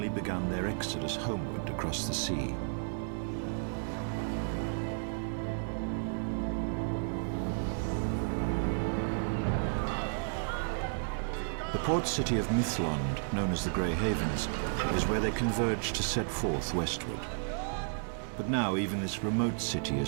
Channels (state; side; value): silent; left; 56 dB below the other